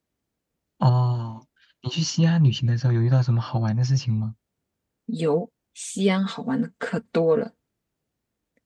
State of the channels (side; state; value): both; identical; correlation 1.00